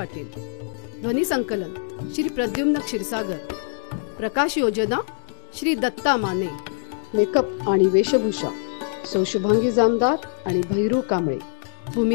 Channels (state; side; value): silent; right; 63 dB below the other